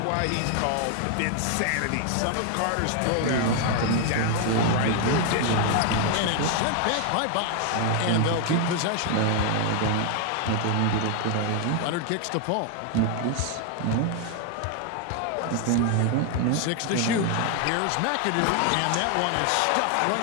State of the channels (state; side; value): different; both; correlation 0.00